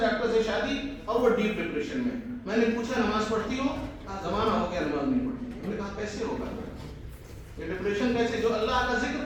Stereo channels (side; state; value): both; identical; correlation 1.00